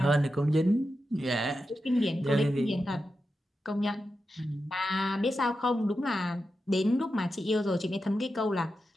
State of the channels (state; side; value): normal; both; correlation 0.89